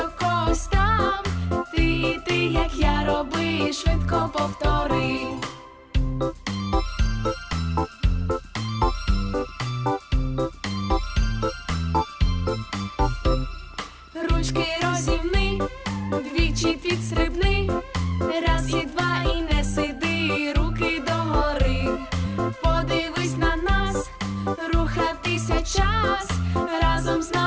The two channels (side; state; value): both; identical; correlation 1.00